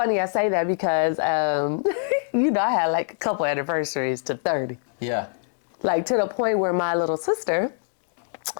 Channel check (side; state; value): right; silent; digital silence